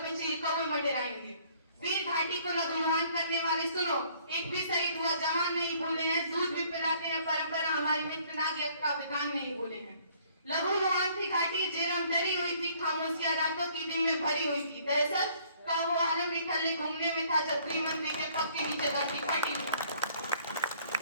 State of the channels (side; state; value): both; inverted; correlation -0.60